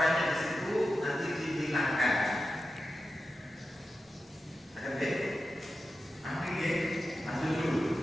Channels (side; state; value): both; normal; correlation 0.91